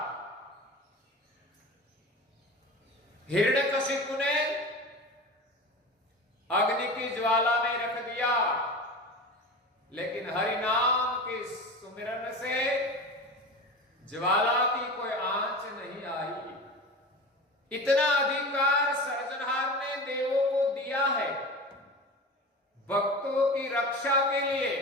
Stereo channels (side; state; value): both; normal; correlation 0.31